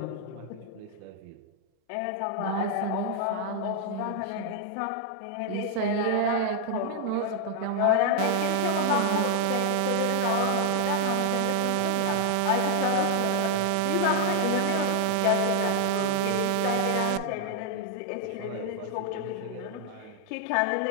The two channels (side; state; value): both; different; correlation 0.00